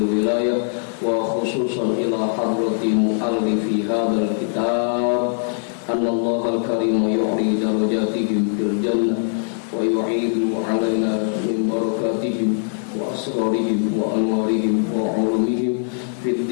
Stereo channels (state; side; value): silent; right; 65 dB below the other